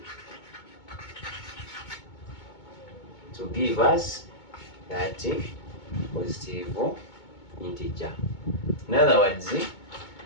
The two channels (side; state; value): right; late; 2.2 ms